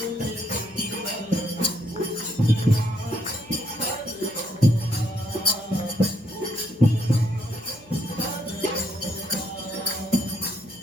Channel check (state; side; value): noise; left; hum, 25 dB below the sound